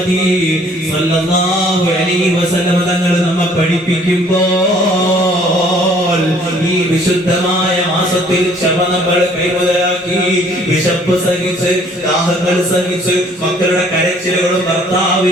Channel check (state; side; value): normal; both; correlation 0.58